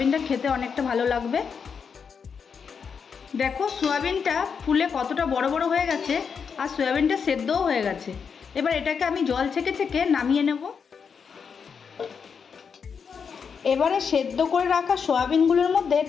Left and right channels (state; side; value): quieter; right; 6.3 dB